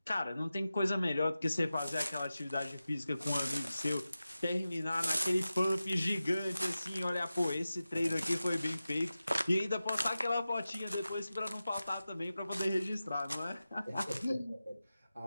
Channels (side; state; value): both; inverted; correlation -0.95